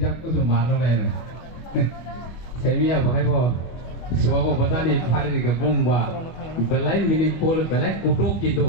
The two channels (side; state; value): right; late; 24 ms